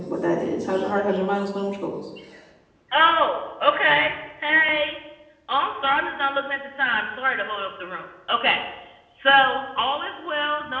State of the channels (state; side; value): identical; both; correlation 1.00